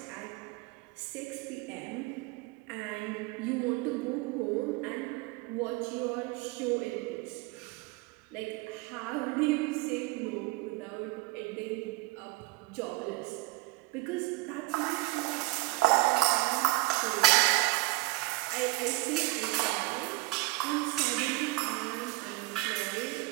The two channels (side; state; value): left; quieter; 22.2 dB